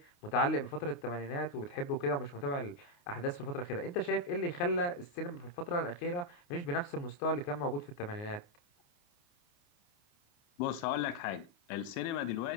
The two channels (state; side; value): late; right; 29 ms